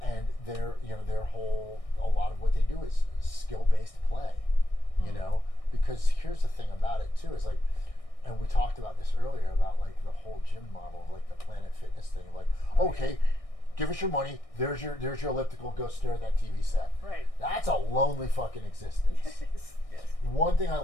And a lot of what they do is skill-based play, you know, because here's the thing about it too, is like, and we talked about this earlier about like the whole gym model of like the Planet Fitness thing, like, okay, give us your money, there's your elliptical, go stare at that TV set. Right. That's a lonely fucking existence. Yes. Yes. One thing I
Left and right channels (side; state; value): right; late; 1.6 ms